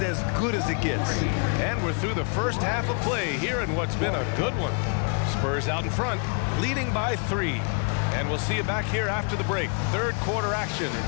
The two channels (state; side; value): quieter; right; 38.9 dB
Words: as good as it gets. And we're through the first half of play here in what's been a good one. Spurs out in front, leading by 3. And we'll see you back here after the break. Third quarter action